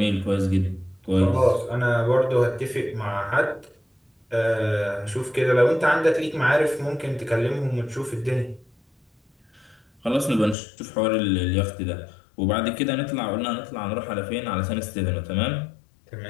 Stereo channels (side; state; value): right; drops out; at 10.6 s